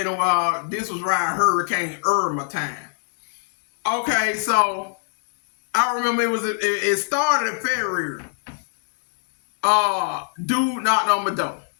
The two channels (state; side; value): silent; right; digital silence